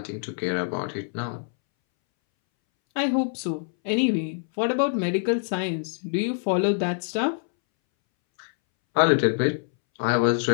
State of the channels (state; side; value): silent; right; 62 dB below the other